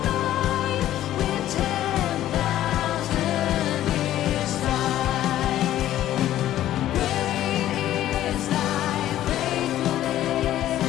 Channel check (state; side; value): quieter; right; 13.0 dB